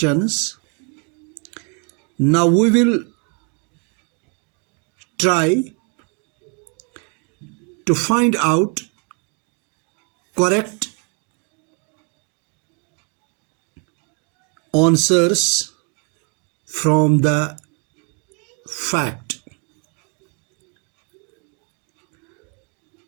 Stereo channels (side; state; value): left; quieter; 37.3 dB